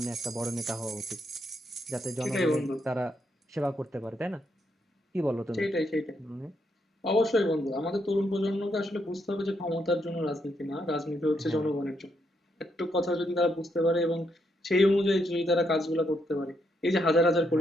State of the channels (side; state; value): both; normal; correlation 0.78